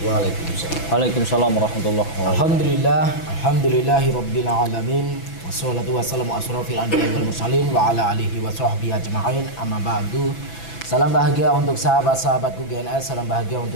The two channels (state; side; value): late; right; 6.0 ms